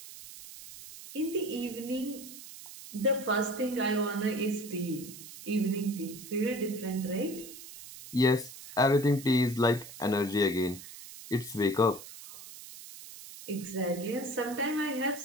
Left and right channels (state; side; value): noise; right; hiss, 14 dB below the sound